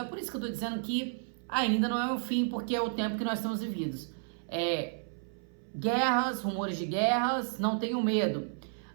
por isso que eu estou dizendo que ainda não é o fim, porque é o tempo que nós estamos vividos. Guerras, rumores de guerras, não tenham medo,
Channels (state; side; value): silent; left; 56 dB below the other